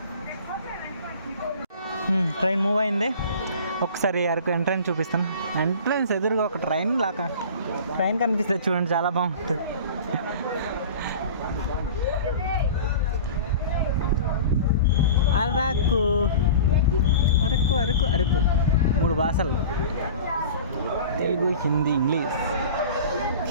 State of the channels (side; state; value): both; inverted; correlation -0.39